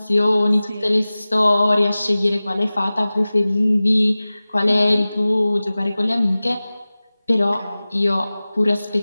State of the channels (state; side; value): inverted; both; correlation -0.97